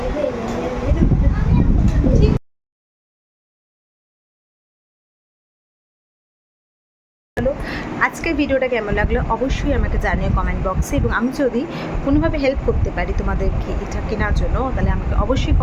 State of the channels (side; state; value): both; identical; correlation 1.00